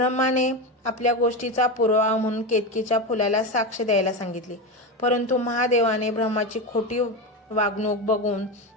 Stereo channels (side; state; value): both; normal; correlation 0.17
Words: आपल्या गोष्टीचा पुरावा म्हणून केतकीच्या फुलाला साक्ष द्यायला सांगितले, परंतु महादेवाने ब्रह्माची खोटी वागणूक बघून